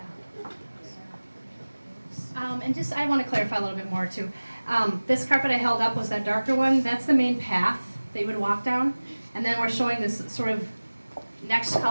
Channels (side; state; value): both; inverted; correlation -1.00